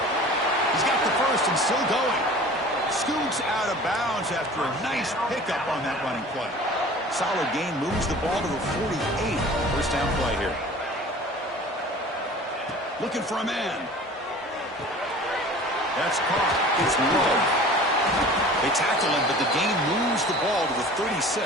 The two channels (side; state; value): both; normal; correlation 0.43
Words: He's got the first and still going. Scoots out of bounds after a nice pickup on that running play. Solid gain, moves the ball to the 48. First down play here. Looking for a man. That's caught. It's low. They tackle him, but the gain moves the ball to the